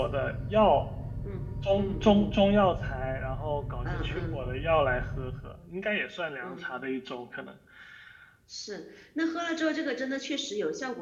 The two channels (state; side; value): identical; both; correlation 1.00